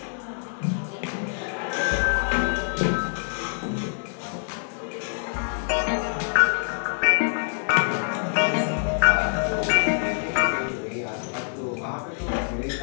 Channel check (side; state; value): right; silent; 61 dB below the other